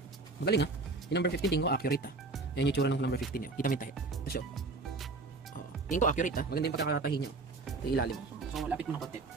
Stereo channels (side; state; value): left; quieter; 3.6 dB